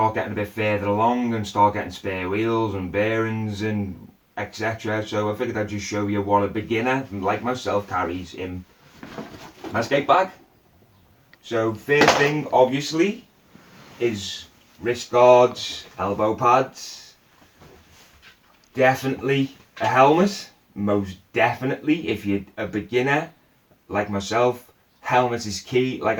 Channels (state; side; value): identical; both; correlation 1.00